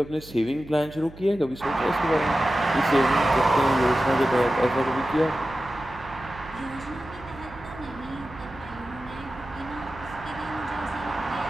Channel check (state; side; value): noise; right; hum, 18 dB below the sound